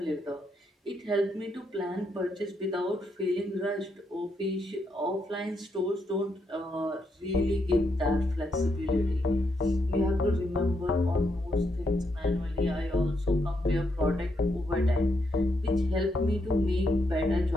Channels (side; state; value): both; normal; correlation 0.79